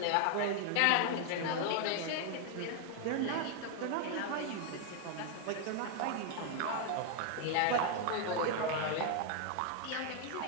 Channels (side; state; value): both; different; correlation 0.00